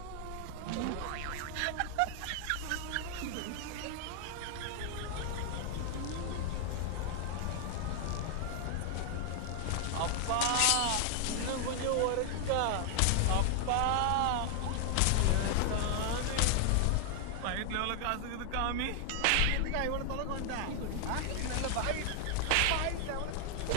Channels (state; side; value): different; both; correlation 0.00